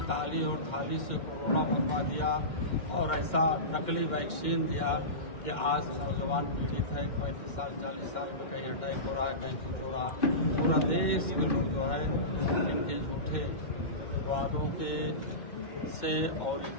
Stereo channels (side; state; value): right; late; 2.1 ms